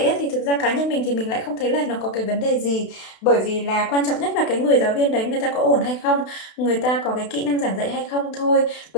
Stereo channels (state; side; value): late; right; 32 ms